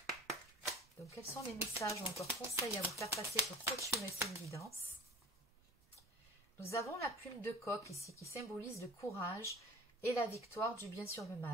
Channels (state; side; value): normal; both; correlation 0.41